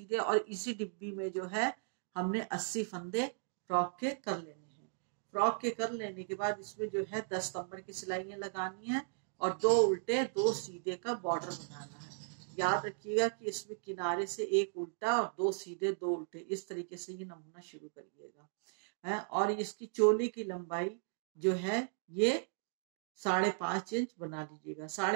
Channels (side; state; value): left; silent; digital silence